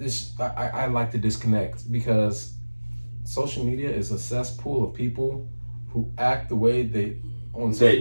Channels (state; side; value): inverted; both; correlation -1.00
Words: I like to disconnect because social media is a cesspool of people who act the way they on social